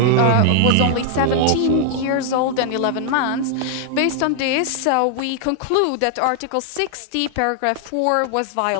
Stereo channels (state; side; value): different; both; correlation -0.01